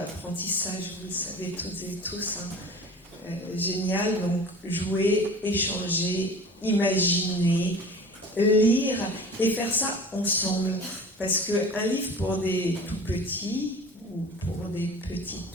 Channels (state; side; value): normal; both; correlation 0.40